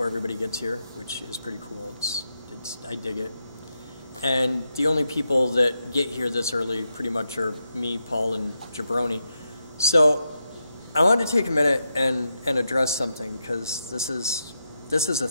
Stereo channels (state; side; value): inverted; both; correlation -0.85